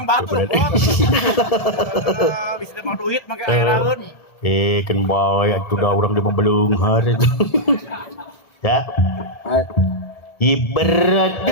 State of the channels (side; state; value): right; late; 1.7 ms